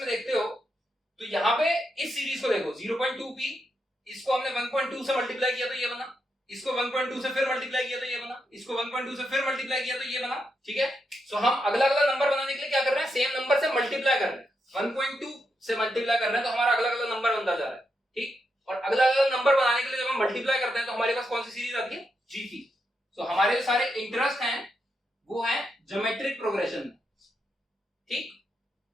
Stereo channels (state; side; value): normal; both; correlation 0.83